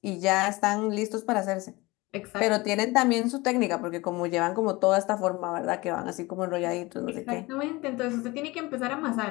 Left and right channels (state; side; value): quieter; right; 22.4 dB